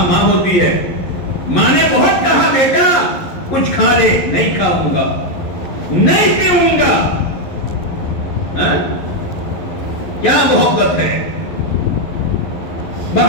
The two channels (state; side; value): late; right; 11 ms